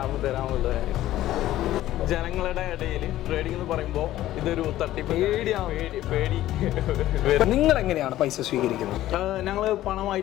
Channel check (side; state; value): right; quieter; 14.3 dB